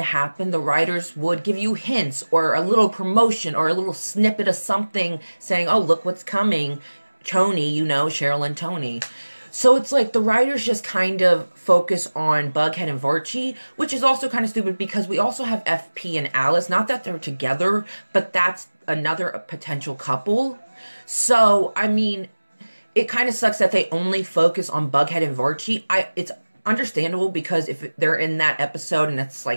happen, the writers would give you hints or a little promotion or a little snippet of something saying, oh, look what's coming. Tony, you know, Cheryl and Tony. So it's like the writers just kind of focus on Bughead and Barchi, which is also kind of stupid because we also have FP and Alice. Not that they're together, but that's another potential couple. So, I mean, it kind of sucks that they only focus on Bughead and Barchi. It's understandable because if they're in that episode and it's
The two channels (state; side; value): inverted; both; correlation -1.00